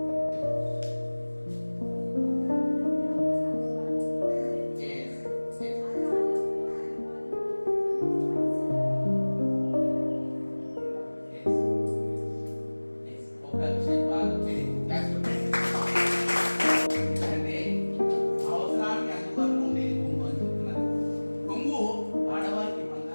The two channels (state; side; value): inverted; both; correlation -1.00